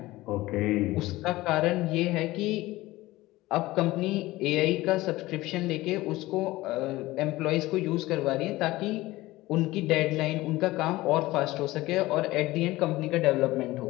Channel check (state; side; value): quieter; right; 18.5 dB